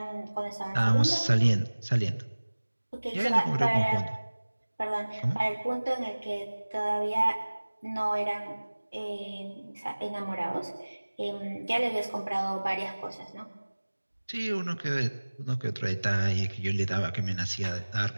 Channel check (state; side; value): inverted; both; correlation -1.00